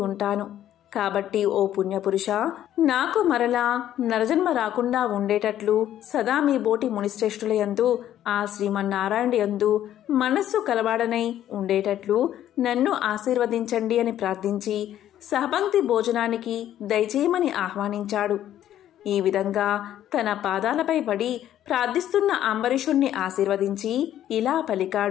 ఉంటాను. కాబట్టి ఓ పుణ్యపురుష, నాకు మరలా నరజన్మ రాకుండా ఉండేటట్లు సదా మీ బోటి మునిశ్రేష్ఠుల యందు, ఆ శ్రీమన్నారాయణ యందు మనస్సు కలవాడనై ఉండేటట్లు నన్ను ఆశీర్వదించండి అని ప్రార్థించి సహపంక్తి భోజనానికి దయచేయమని ఆహ్వానించాడు. ఈ విధంగా తన పాదాలపై పడి ప్రార్థిస్తున్న అంబరీషుణ్ణి ఆశీర్వదించి ఇలా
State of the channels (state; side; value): quieter; right; 11.7 dB